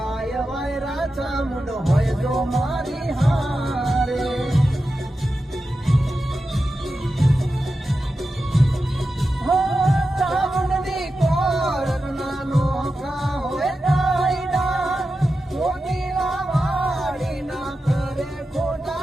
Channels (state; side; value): normal; both; correlation 0.91